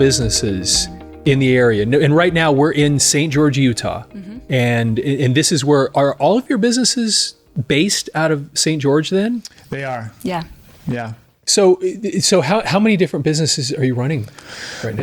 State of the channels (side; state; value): both; identical; correlation 1.00